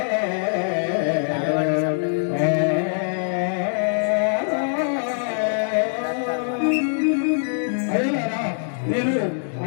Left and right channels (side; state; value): right; silent; digital silence